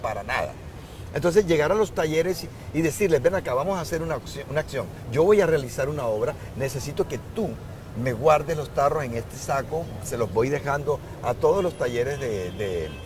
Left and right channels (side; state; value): both; identical; correlation 1.00